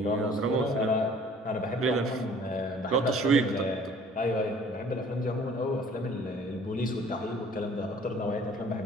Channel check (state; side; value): normal; both; correlation 0.52